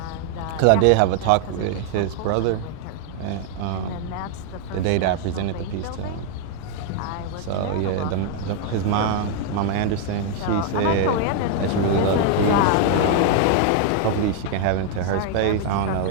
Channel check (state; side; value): different; both; correlation 0.00